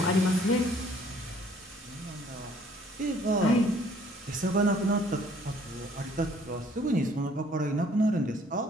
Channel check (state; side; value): normal; both; correlation 0.59